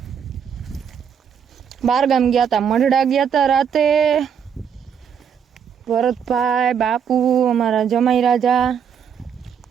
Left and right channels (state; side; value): quieter; left; 7.6 dB